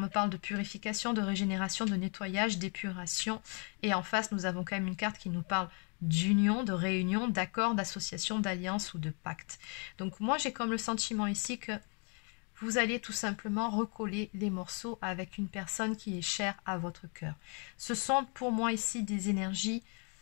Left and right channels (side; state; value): right; quieter; 37.8 dB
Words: parle de purification, de régénération, de nettoyage, d'épuration. Et en face, nous avons quand même une carte qui nous parle d'union, de réunion, d'accord, d'association, d'alliance ou de pacte. Donc, moi, j'ai comme le sentiment ici que vous allez tout simplement recoller les morceaux avec une personne qui est chère à votre cœur. Ce sont pour moi ici des énergies